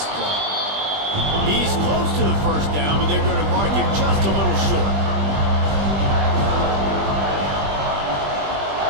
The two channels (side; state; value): left; late; 20 ms